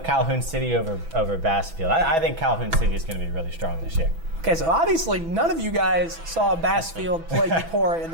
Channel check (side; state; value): left; late; 6.1 ms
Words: Calhoun City over Bassfield. I think Calhoun City is going to be really strong this year. Okay, so obviously none of you guys saw Bassfield play Eupora in